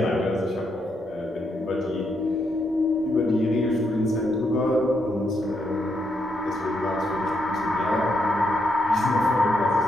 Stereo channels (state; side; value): normal; both; correlation 0.79